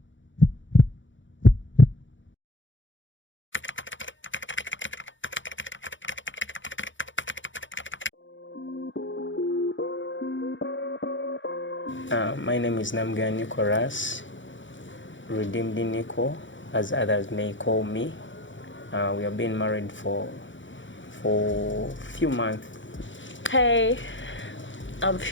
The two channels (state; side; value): late; right; 0.55 ms